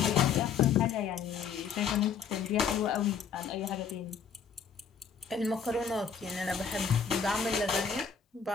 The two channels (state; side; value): quieter; right; 6.7 dB